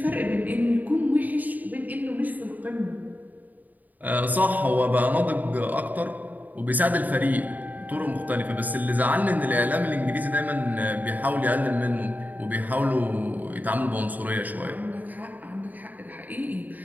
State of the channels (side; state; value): left; late; 0.081 ms